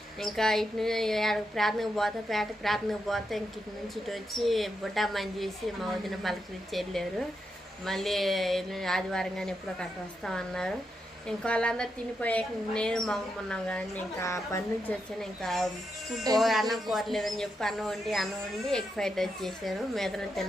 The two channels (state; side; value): normal; both; correlation 0.84